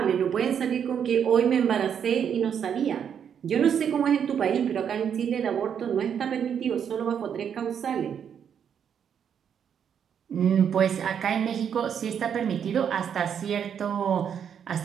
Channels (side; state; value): left; quieter; 8.1 dB